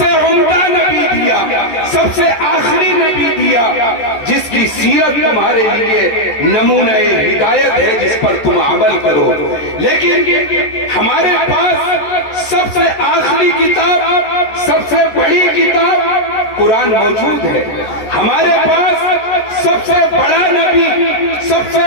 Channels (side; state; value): right; late; 14 ms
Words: عمدہ نبی دیا، سب سے آخری نبی دیا، جس کی سیرت تمہارے لیے نمونہ ہدایت ہے، جس پر تم عمل کرو۔ لیکن ہمارے پاس سب سے آخری کتاب، سب سے بڑی کتاب قرآن موجود ہے، ہمارے پاس سب سے بڑا نبی، سب سے